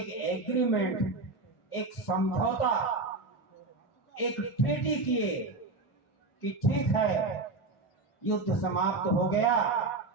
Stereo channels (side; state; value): left; quieter; 3.4 dB